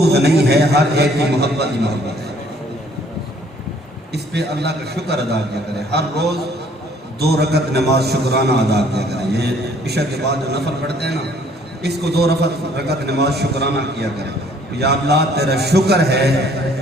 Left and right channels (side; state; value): both; normal; correlation 0.60